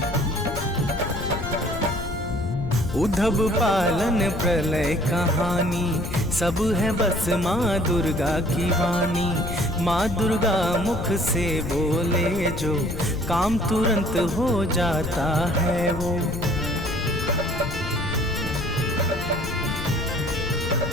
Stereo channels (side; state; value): left; noise; rumble, 7 dB below the sound